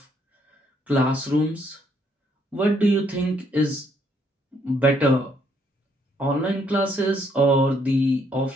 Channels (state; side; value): normal; both; correlation 0.70